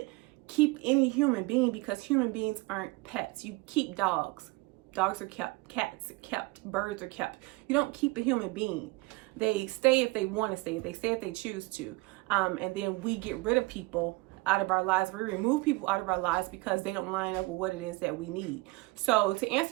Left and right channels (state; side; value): quieter; left; 23.1 dB